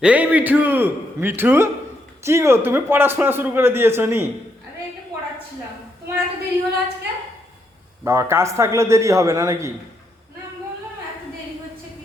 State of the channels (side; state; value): both; normal; correlation 0.77